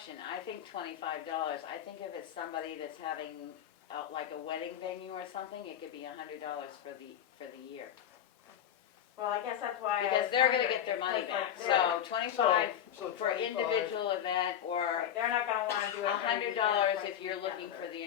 I think $25. I think if it's somebody that's having like a wedding venue or something, it could be $100 for the year. Well, I guess that's why I Because was they're gonna wondering, get their it's money 'cause, back. like, So 25 So for 25 individual event, or right, they're not gonna wanna do it every $100 weekend, if twice you're a weekend, looking or for the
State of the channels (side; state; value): right; quieter; 10.1 dB